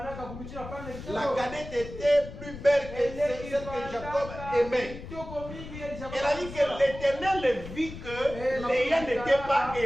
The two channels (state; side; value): noise; left; rumble, 12 dB below the sound